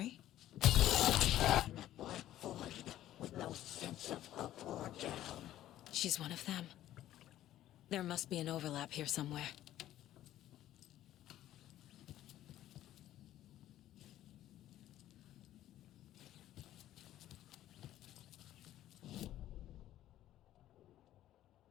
With no sense of up or down. She's one of them. There must be an overlap here somewhere.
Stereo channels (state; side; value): quieter; right; 13.2 dB